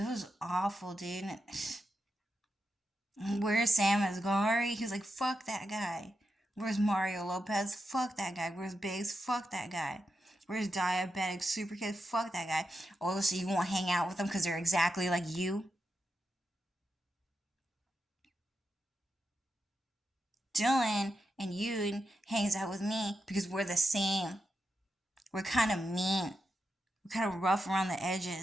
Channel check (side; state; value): both; normal; correlation 0.87